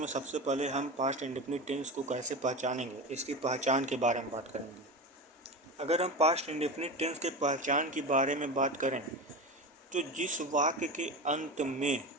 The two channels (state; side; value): normal; both; correlation 0.25